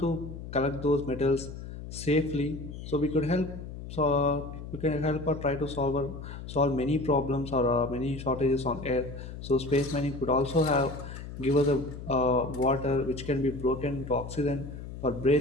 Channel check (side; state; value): left; noise; hum, 10 dB below the sound